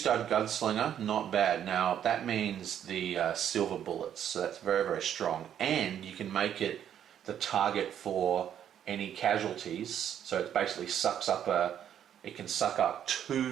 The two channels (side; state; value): left; quieter; 9.8 dB